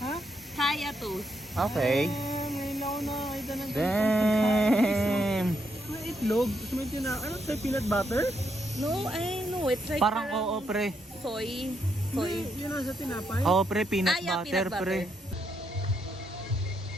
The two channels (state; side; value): normal; both; correlation 0.78